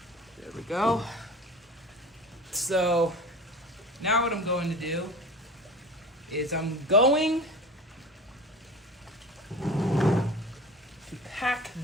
There we go. So now what I'm going to do is I'm going to pack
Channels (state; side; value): normal; both; correlation 0.37